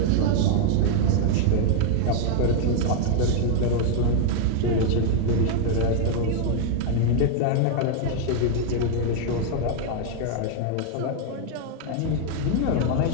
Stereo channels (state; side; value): different; both; correlation 0.00